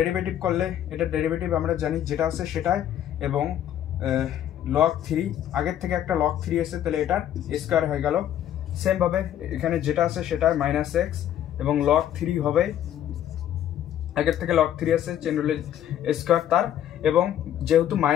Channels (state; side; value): quieter; right; 11.0 dB